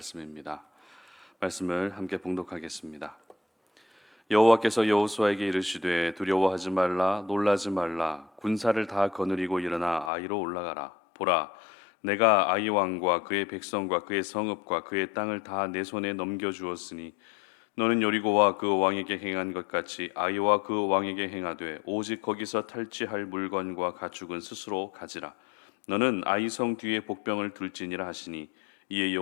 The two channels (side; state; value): right; drops out; at 10.1 s